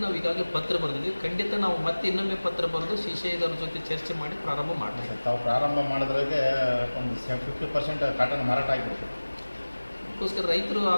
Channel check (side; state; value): both; inverted; correlation -1.00